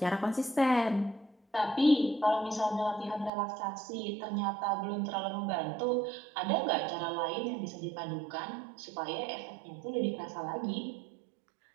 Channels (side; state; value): left; drops out; at 3.3 s